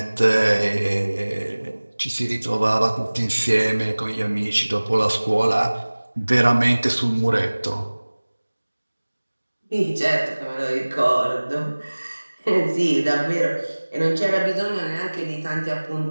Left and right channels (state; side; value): inverted; both; correlation -1.00